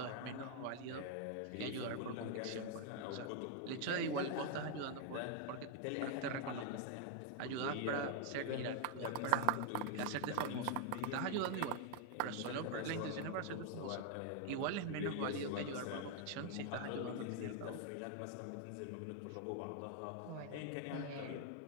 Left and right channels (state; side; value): different; both; correlation 0.00